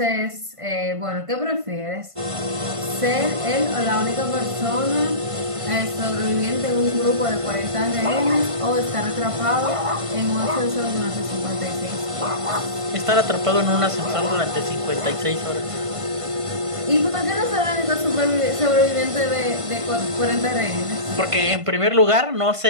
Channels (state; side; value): late; left; 1.5 ms